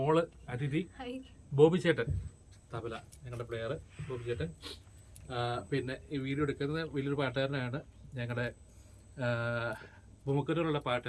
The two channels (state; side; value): identical; both; correlation 1.00